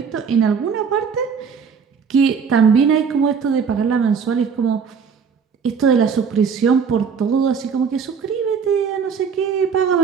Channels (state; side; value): quieter; left; 6.2 dB